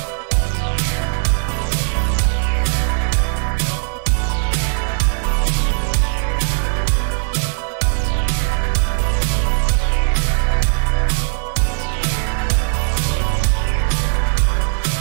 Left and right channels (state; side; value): silent; left; 67 dB below the other